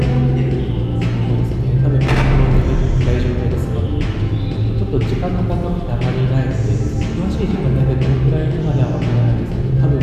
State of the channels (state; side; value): identical; both; correlation 1.00